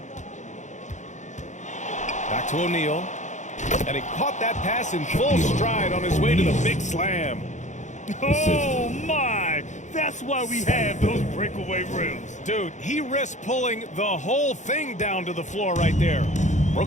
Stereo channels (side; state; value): right; late; 0.35 ms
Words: Back to O'Neal. And he caught that pass in full stride on his way to the big slam. Oh, my. That's why we have those breakaway rims. Dude, he risked pulling the whole thing down to the floor right there.